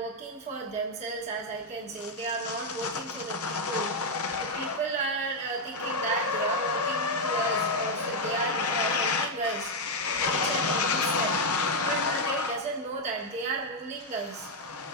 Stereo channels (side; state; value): both; normal; correlation 0.01